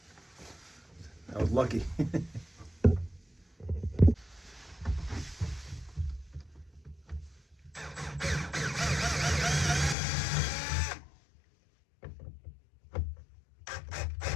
I was lucky.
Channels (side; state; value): right; drops out; at 10.0 s